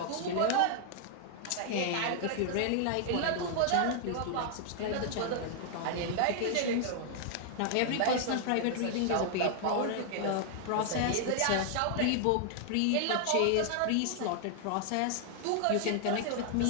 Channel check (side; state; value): both; different; correlation 0.00